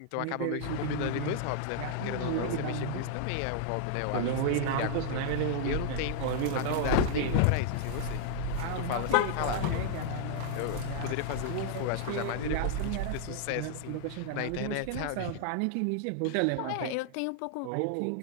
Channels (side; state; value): both; different; correlation 0.00